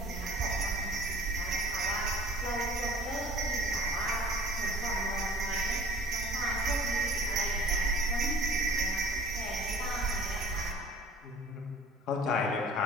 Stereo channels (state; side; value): normal; both; correlation 0.46